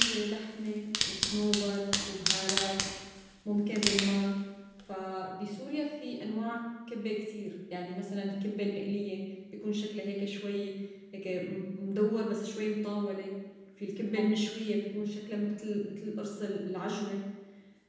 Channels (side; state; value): both; identical; correlation 1.00